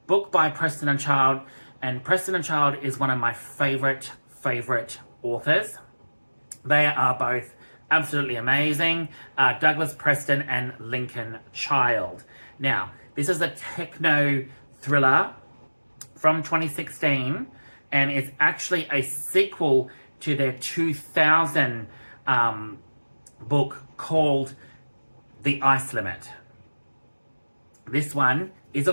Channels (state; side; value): inverted; both; correlation -1.00